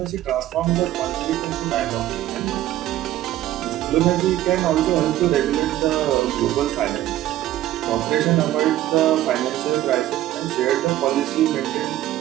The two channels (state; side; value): quieter; left; 13.8 dB